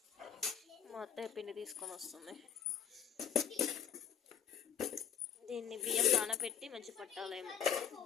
మా అత్తయ్య పిండి తీసుకొని వస్తుంది. దీన్ని బియ్యం నానబెట్టి మంచి పట్టాలేమో.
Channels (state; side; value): quieter; right; 8.6 dB